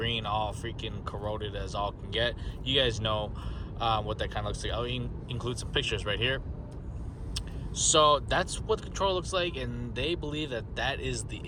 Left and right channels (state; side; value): identical; both; correlation 1.00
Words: all freaking corroded as all can get. You guys know what that kind of looks like. I'll include some pictures right here. So that's what the controller looks like, and they believe that that is the